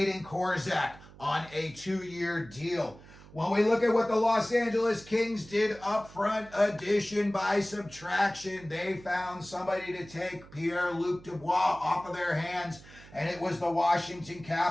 Korzak on a 2-year deal. When we look at what the Los Angeles Kings did up front, addition by subtraction, they found somebody to take Pierre-Luc Dubois off of their hands, and it was the Washington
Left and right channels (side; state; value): right; noise; hum, 20 dB below the sound